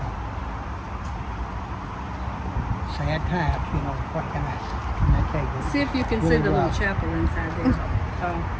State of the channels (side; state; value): both; identical; correlation 1.00